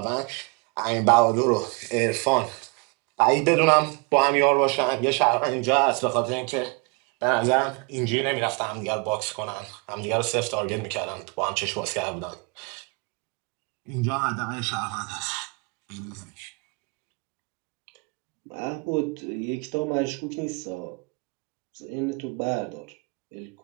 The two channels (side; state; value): left; quieter; 30.5 dB